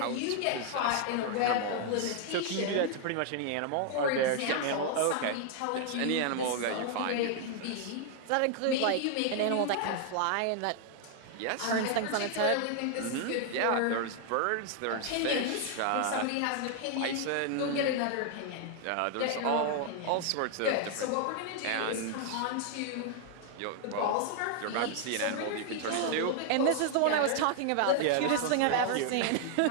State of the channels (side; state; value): both; different; correlation 0.00